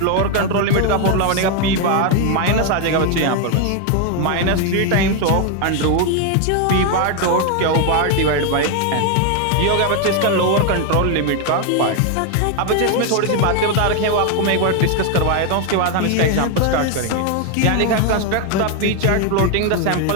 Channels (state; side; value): different; both; correlation 0.01